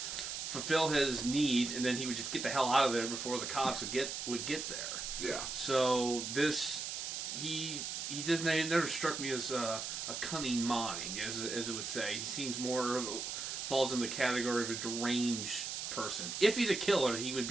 fulfill his needs, and then he would just get the hell out of there before the cops would get there. Yeah. So he he didn't. He never struck me as a cunning mind, as it would say. He seems more falls in the category of a deranged person. If he's a killer, he would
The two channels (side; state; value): right; noise; hiss, 4 dB below the sound